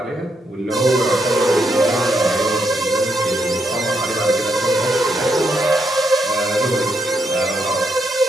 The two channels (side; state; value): both; normal; correlation 0.78